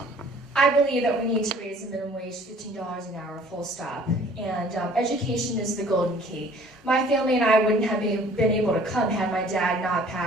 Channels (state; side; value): normal; both; correlation 0.53